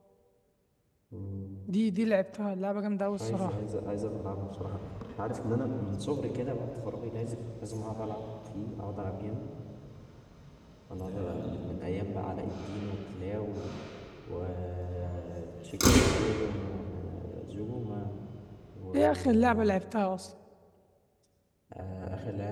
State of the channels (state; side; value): identical; both; correlation 1.00